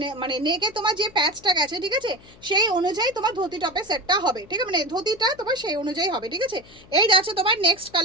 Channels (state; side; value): noise; left; hum, 24 dB below the sound